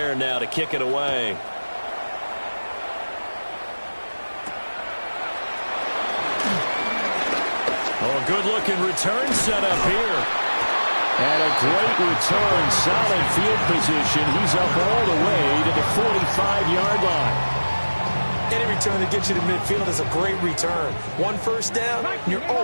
now to kick it away. Oh, good-looking return set up here. And a great return, solid field position. He's up all the way to the 45-yard line. Any return that gets you to midfield is a great return. 1 first down, and you're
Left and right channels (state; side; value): inverted; both; correlation -1.00